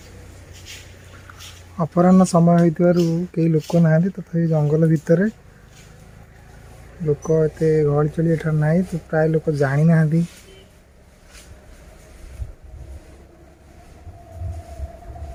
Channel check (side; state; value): both; identical; correlation 1.00